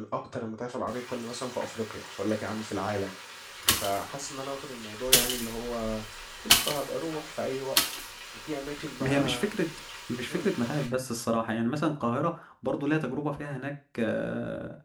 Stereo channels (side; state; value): both; identical; correlation 1.00